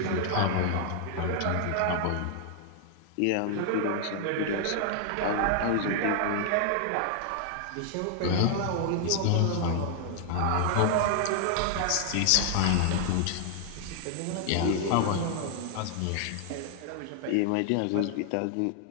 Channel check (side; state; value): both; different; correlation 0.00